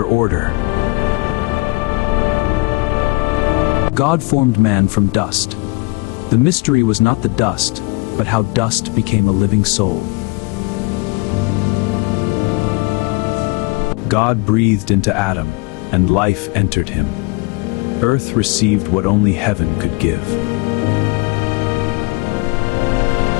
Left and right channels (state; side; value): quieter; right; 27.2 dB